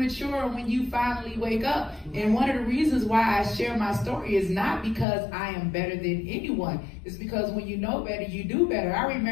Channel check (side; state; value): right; drops out; at 5.1 s